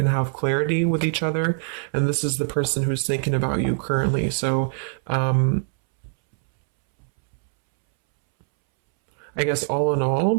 have clarity with each other. And this is the person who's thinking about you currently. So I guess all in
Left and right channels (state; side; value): silent; left; 63 dB below the other